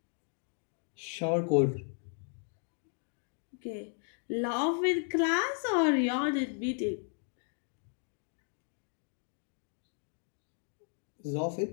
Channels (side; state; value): right; silent; 54 dB below the other